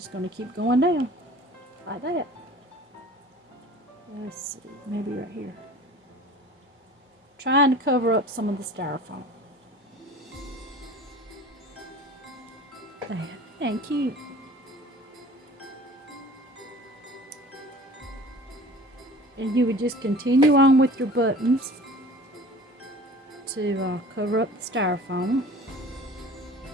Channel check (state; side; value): normal; both; correlation 0.43